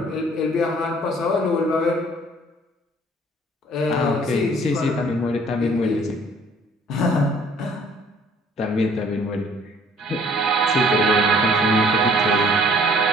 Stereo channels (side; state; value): both; normal; correlation 0.56